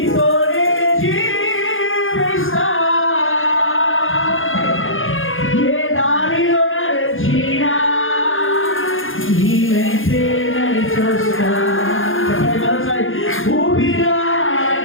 జీవిస్తా, ఏ దారిలో నడిచినా నీ వెంటే నడిచొస్తా. చెప్పండి మరోసారి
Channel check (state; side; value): late; right; 0.59 ms